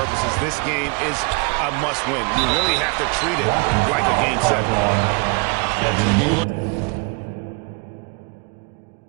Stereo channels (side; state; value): left; quieter; 31.1 dB